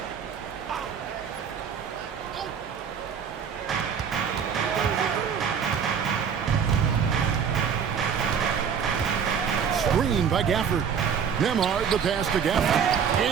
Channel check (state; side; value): quieter; left; 7.2 dB